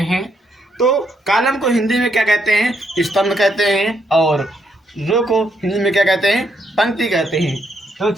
हैं। तो कॉलम को हिंदी में क्या कहते हैं, स्तंभ कहते हैं, और रो को हिंदी में क्या कहते हैं, पंक्ति कहते हैं। तो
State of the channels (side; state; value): both; normal; correlation 0.75